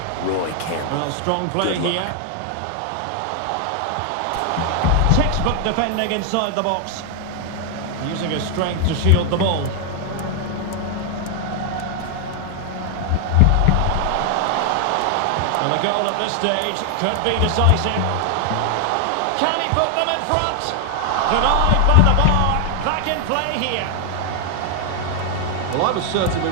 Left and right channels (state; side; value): different; both; correlation 0.00